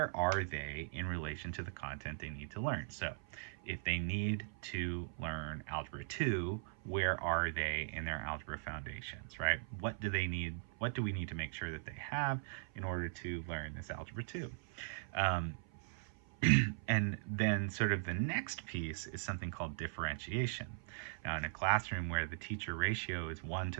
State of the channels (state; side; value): silent; left; 51 dB below the other